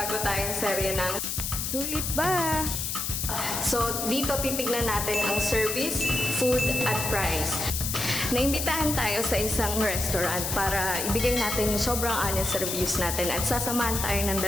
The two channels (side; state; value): left; noise; hiss, 2 dB below the sound